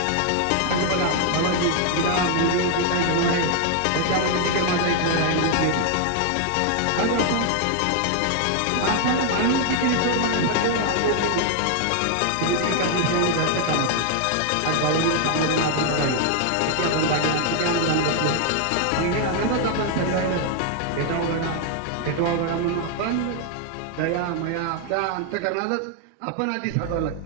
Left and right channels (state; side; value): different; both; correlation 0.00